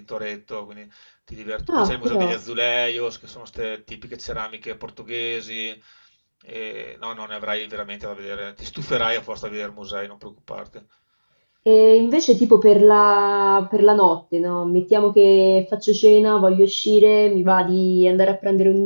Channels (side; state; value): both; inverted; correlation -1.00